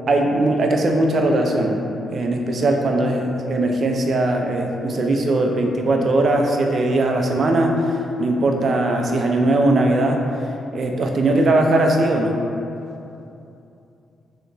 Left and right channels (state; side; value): normal; both; correlation 0.79